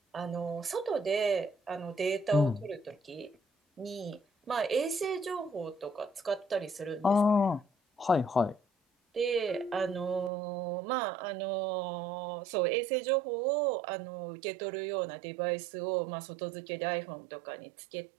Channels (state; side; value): drops out; left; at 10.3 s